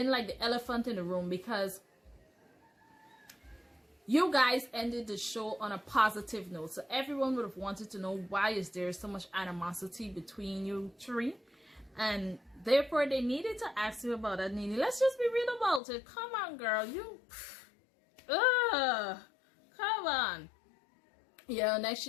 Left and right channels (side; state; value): right; drops out; at 15.8 s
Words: like the elephant in the room, because you guys ended the show on a positive note, so everyone would have wanted to know, why is there so much animosity between you three? And therefore they needed to ask you about that, Nene. Let's just be real about it. Come on, girl. Come on. Yeah, next